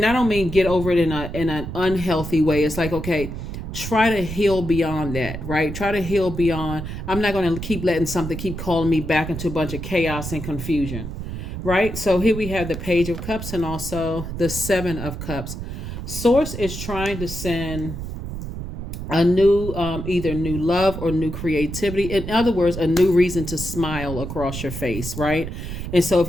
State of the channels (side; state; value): right; noise; rumble, 7 dB below the sound